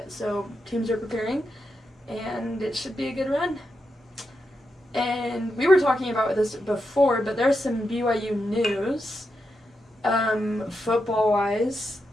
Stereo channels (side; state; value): both; normal; correlation 0.86